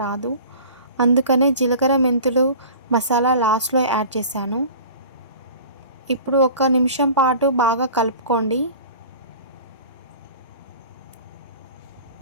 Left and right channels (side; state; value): both; inverted; correlation -0.41